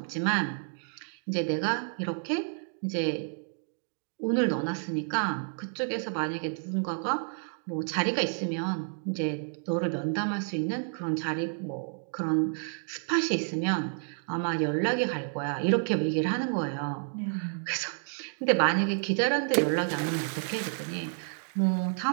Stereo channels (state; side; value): silent; left; 58 dB below the other